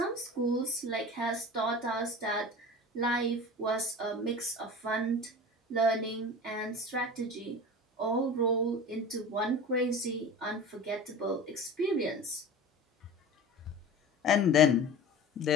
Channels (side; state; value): both; normal; correlation 0.35